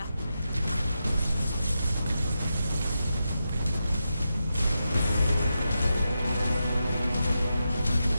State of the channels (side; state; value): both; inverted; correlation -0.88